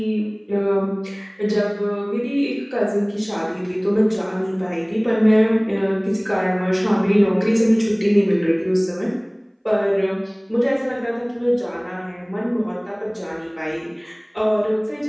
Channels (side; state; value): both; identical; correlation 1.00